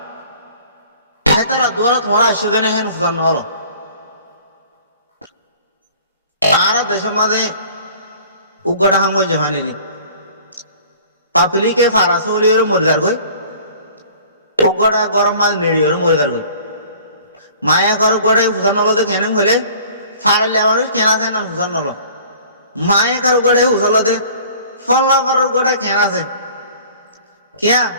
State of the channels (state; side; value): inverted; both; correlation -0.49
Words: হে তারা দ্বারা তোমার আসে দেন হেন ফুসান নল আর দেশের মাঝে উগাটা হাম গই জাহানি পাপলিকে ফারাস হলিওর মরিদার গই উগাটা গরম মাঝে নেড়িওর মরিদার গই মায়া কর উগাটা ফুসান নল দে কেন হলে ফারালে আমার কেনা আছে না ফুসান নল মায়া কার উগাটা ফুসাল দে ফল্লা কর উগাটা কেন আছে কেয়া